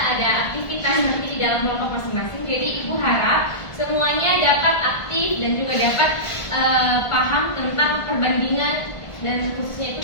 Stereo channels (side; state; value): right; late; 1.5 ms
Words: ada aktivitas nanti di dalam kelompok masing-masing. Jadi Ibu harap semuanya dapat aktif dan juga dapat paham tentang perbandingan, dan khususnya